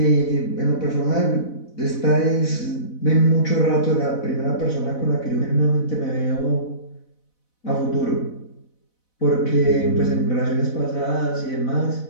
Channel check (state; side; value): late; right; 4.0 ms